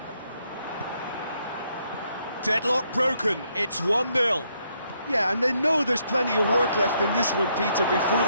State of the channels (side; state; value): both; inverted; correlation -0.74